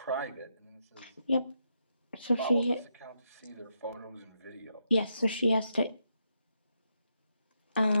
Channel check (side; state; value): both; inverted; correlation -0.82